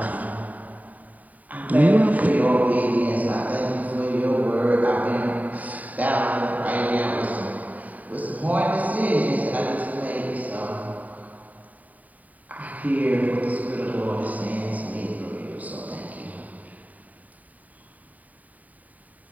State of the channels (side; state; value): left; late; 0.074 ms